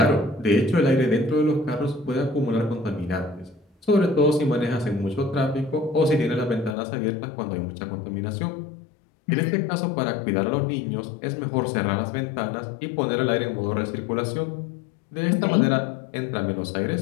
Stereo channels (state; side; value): drops out; right; at 6.8 s